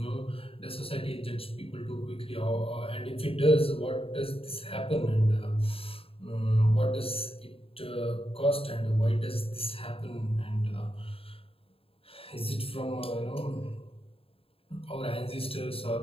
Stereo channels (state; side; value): late; right; 0.27 ms